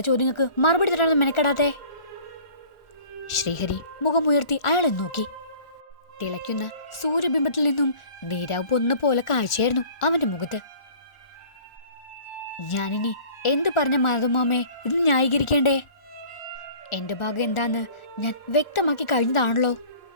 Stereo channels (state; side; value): late; right; 1.4 ms